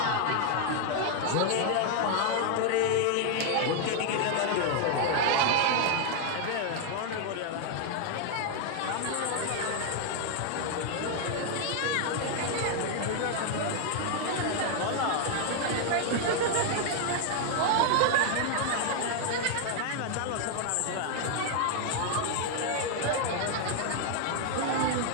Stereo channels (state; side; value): different; both; correlation 0.00